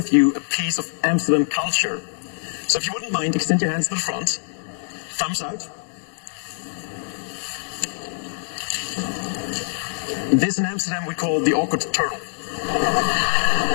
you a piece of Amsterdam culture. So if you wouldn't mind, extend your hands to the front. Thumbs out. This in Amsterdam we call the awkward turtle.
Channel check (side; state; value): right; silent; digital silence